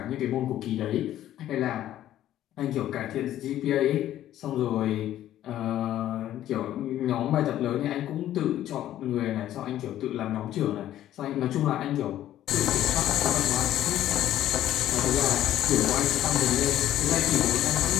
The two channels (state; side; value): quieter; right; 12.6 dB